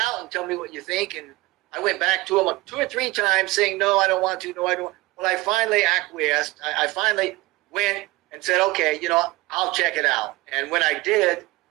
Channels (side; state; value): left; quieter; 20.3 dB